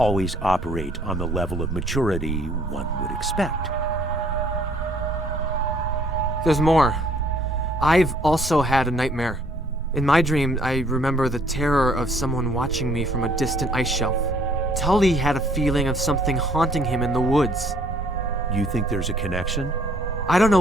operate on the level of maturity one would expect. There's more. I've also had a nightmare. In my dream, I remember the terror of someone watching me from a distant ice shelf. Tully had a feeling of something haunting him in the woods. You think there's a connection? I don't know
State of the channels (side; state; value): both; normal; correlation 0.61